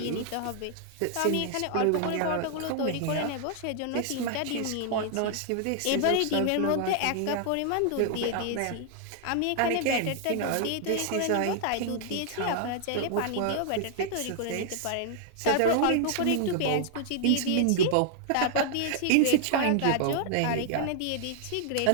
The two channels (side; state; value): both; different; correlation -0.01